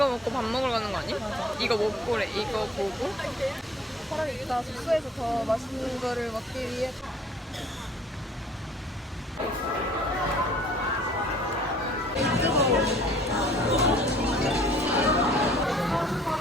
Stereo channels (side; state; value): both; normal; correlation 0.55